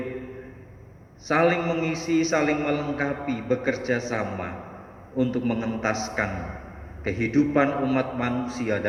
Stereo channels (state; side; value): identical; both; correlation 1.00